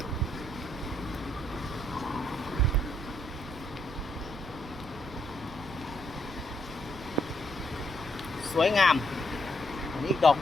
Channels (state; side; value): normal; both; correlation 0.75